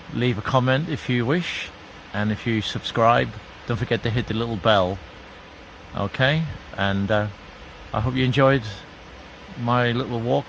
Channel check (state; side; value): identical; both; correlation 1.00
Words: leave a comment if you wish. And if you subscribe, don't forget to hit the little bell. Okay, and I hope you enjoyed my little